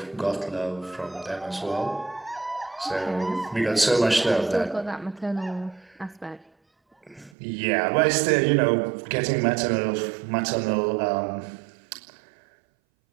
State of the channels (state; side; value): drops out; left; at 7.4 s